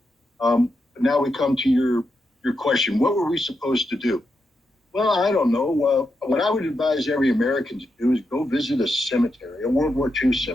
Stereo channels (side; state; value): both; normal; correlation 0.85